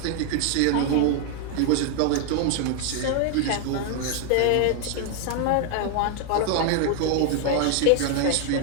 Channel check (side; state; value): both; different; correlation 0.00